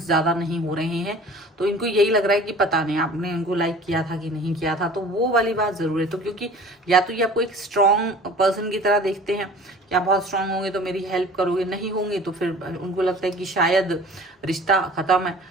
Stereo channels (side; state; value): both; normal; correlation 0.45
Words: ज्यादा नहीं हो रहे हैं, तो इनको यही लग रहा है कि पता नहीं आपने इनको लाइक किया था कि नहीं किया था। तो वो वाली बात जरूर है। तो क्योंकि या तो ये आपको एक स्ट्रॉन्ग पर्सन की तरह देखते हैं कि आप बहुत स्ट्रांग होंगे तो मेरी हेल्प करोगे, नहीं होंगे तो फिर उनको लगता है कि शायद रिश्ता खत्म है।